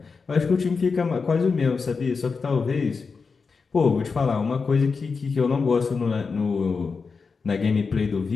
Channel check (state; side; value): quieter; right; 4.9 dB